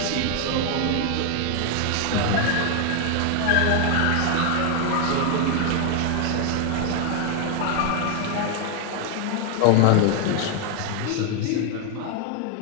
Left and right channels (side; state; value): both; different; correlation 0.00